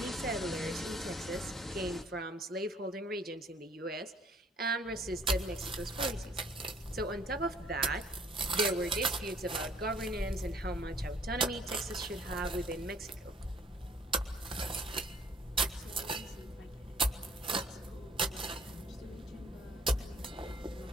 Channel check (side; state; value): both; normal; correlation 0.59